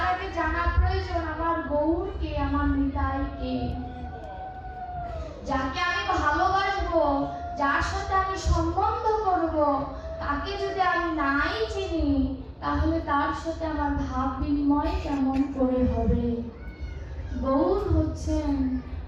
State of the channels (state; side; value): identical; both; correlation 1.00